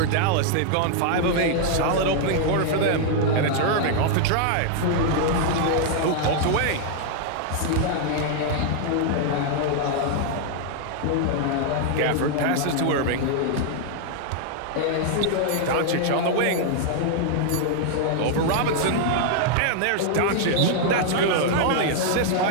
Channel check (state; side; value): different; both; correlation 0.00